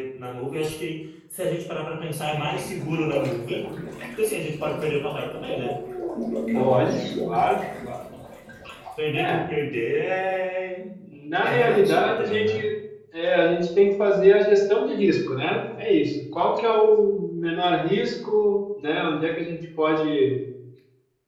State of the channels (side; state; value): both; identical; correlation 1.00